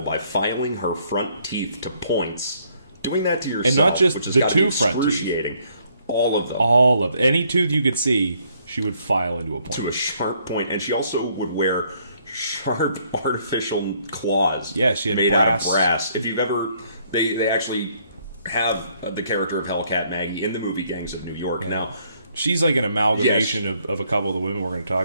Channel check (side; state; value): both; inverted; correlation -0.68